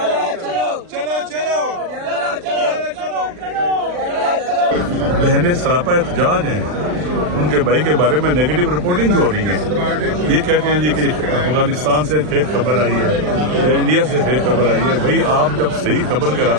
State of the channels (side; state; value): left; late; 40 ms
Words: بہنیں سراپا احتجاج ہیں. ان کے بھائی کے بارے میں نیگیٹو رپورٹنگ ہو رہی ہے. یہ کہتے ہیں جی کہ افغانستان سے فیک خبر آئی ہے یا انڈیا سے فیک خبر آئی ہے. بھائی آپ جب صحیح خبر کے